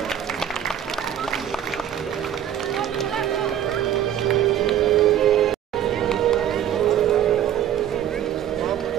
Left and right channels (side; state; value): left; quieter; 10.3 dB